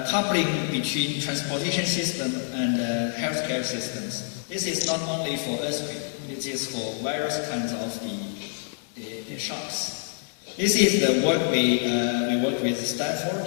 coupling between transportation system and healthcare systems. This is not only for earthquake, it is for various kinds of the shocks. This is the work we work with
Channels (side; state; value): right; silent; 61 dB below the other